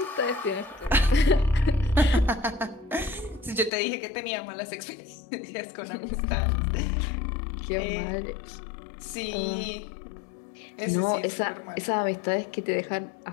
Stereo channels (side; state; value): right; drops out; at 3.7 s